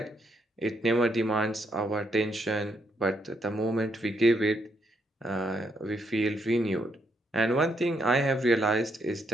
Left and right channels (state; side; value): normal; both; correlation 0.76